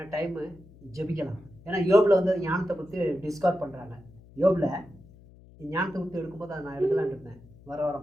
டைமு ஜெபிக்கலாம். ஏன்னா யோபில் வந்து ஞானத்தை பற்றி டிஸ்கவர் பண்ணுறாங்க. யோபில் ஞானத்தை பற்றி எடுக்கும்போது அதை நான் எடுக்கலான்ட்டு இருந்தேன். வர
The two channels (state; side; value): noise; left; hum, 23 dB below the sound